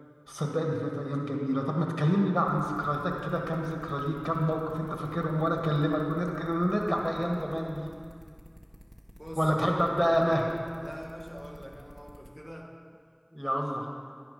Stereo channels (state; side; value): identical; both; correlation 1.00